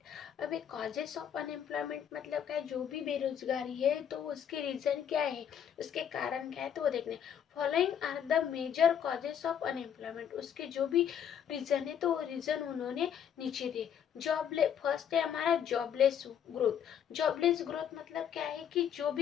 अब एक कॉजेस ऑफ अनएम्प्लॉयमेंट मतलब क्या है, जो भी बेरोजगारी है तो उसके रीजन क्या है, उसके कारण क्या है तो वो देखने। Following are the major causes of unemployment, उसके जो भी रीजन है तो वो रीजन उन्होंने नीचे दिए। फर्स्ट है हमारा जॉबलेस ग्रोथ। जॉबलेस ग्रोथ मतलब क्या है कि जो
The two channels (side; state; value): right; quieter; 8.8 dB